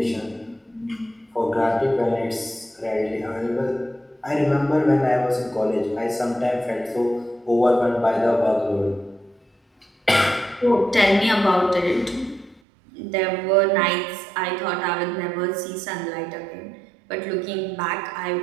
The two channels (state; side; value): drops out; left; at 12.6 s